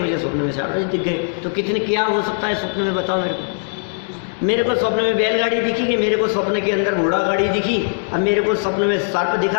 स्वप्न में शारदा जी दिख गए। तो कितने क्या हो सकता है स्वप्न में, बताओ मेरे को। मेरे को स्वप्न में बैलगाड़ी दिखी कि मेरे को स्वप्न के अंदर घोड़ा गाड़ी दिखी, अब मेरे को स्वप्न में सर्प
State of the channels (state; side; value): silent; right; 66 dB below the other